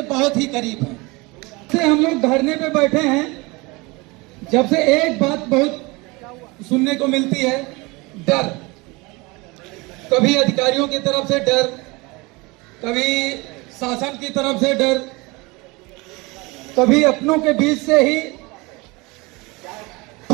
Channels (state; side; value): quieter; left; 24.8 dB